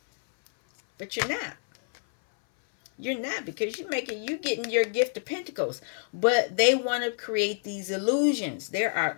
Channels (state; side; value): silent; right; 57 dB below the other